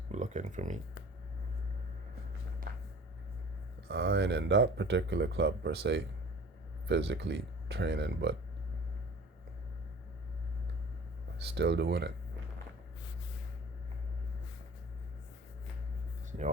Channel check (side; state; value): both; normal; correlation 0.44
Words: looking for me, I ain't in that particular club per se, physically training, but still doing it.